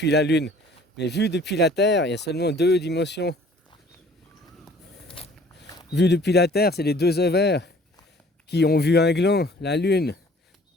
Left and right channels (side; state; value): both; normal; correlation 0.53